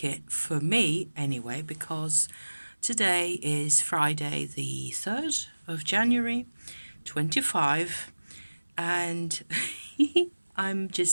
it for me anyway, because today is Friday the 3rd of January, 25, and I'm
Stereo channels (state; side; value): inverted; both; correlation -1.00